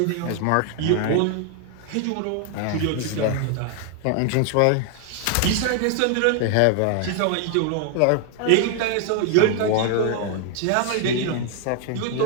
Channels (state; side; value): different; both; correlation 0.00